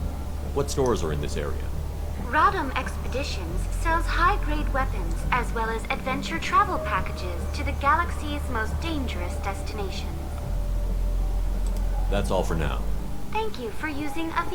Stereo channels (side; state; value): both; identical; correlation 1.00